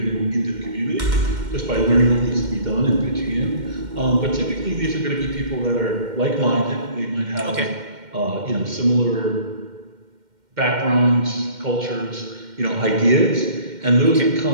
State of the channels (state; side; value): late; left; 2.1 ms